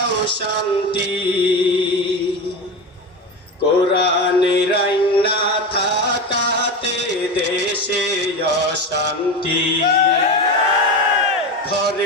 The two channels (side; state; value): both; normal; correlation 0.21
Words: শান্তি, কোরআনের আইন না থাকাতে দেশে অশান্তি।